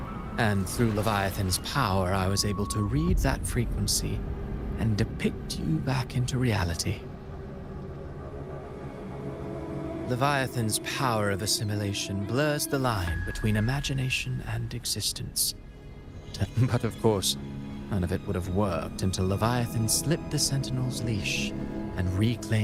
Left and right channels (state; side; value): identical; both; correlation 1.00